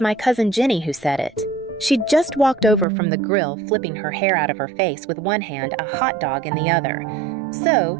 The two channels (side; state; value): left; drops out; at 2.9 s